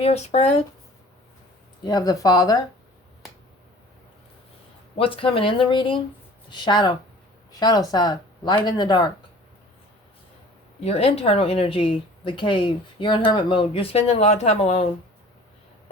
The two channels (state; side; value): normal; both; correlation 0.46